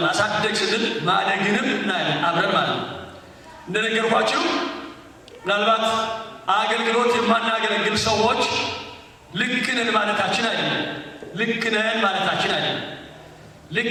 ማሳደግ ስንል ማደግንም እናያለን አብረን ማለት ነው። እንደነገርኳችሁ ምናልባት አገልግሎት የማናገለግል ሰዎች ልክ ነን ማለታችን አይደለም።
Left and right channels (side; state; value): both; identical; correlation 1.00